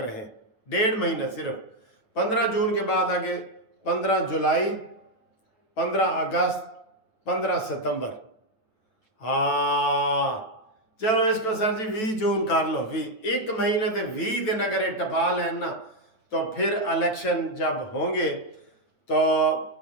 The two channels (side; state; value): right; late; 9.1 ms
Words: 1.5 مہینہ صرف. 15 جون کے بعد آگے 15 جولائی, 15 اگست, 15 ستمبر. ہاں چلو اس کو سر جی 20 جون کر لو. 1 مہینے تے 20 دن اگر یہ ٹپا لیں نا تو پھر الیکشن جب ہوں گے تو